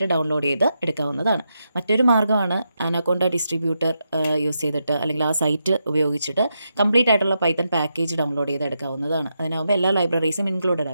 ഡൗൺലോഡ് ചെയ്ത് എടുക്കാവുന്നതാണ്. മറ്റൊരു മാർഗ്ഗമാണ് അനക്കോണ്ട ഡിസ്ട്രിബ്യൂട്ടർ യൂസ് ചെയ്തിട്ട് അല്ലെങ്കിൽ ആ സൈറ്റ് ഉപയോഗിച്ചിട്ട് കംപ്ലീറ്റ് ആയിട്ടുള്ള പൈത്തൺ പാക്കേജ് ഡൗൺലോഡ് ചെയ്ത് എടുക്കാവുന്നതാണ്. അതിനാകുമ്പോൾ എല്ലാ ലൈബ്രറീസും ഇൻക്ലൂഡഡ്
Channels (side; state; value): both; inverted; correlation -0.84